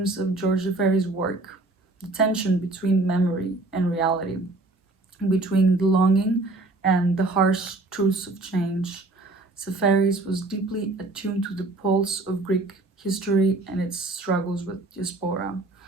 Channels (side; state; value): left; quieter; 3.1 dB